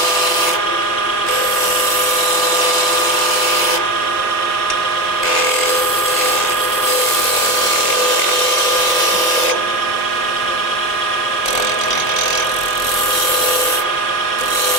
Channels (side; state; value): both; normal; correlation 0.21